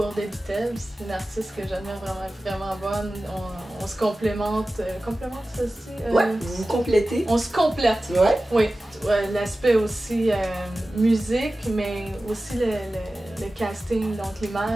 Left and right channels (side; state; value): both; normal; correlation 0.96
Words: The Beatles. C'est une artiste que j'admire vraiment bonne. On se complémente. Complémente ça aussi? Ouais, vous vous complétez. On se complète. Ouais. Oui. L'aspect aussi musique, mais aussi le casting, donc